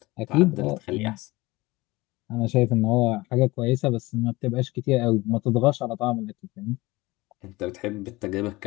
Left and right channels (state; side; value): quieter; right; 21.1 dB